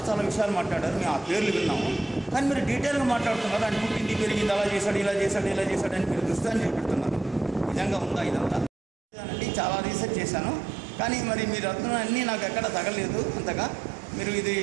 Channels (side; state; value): left; drops out; at 8.7 s